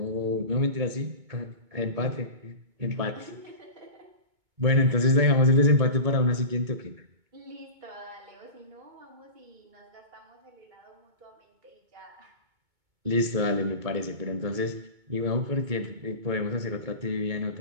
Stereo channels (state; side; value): late; left; 2.2 ms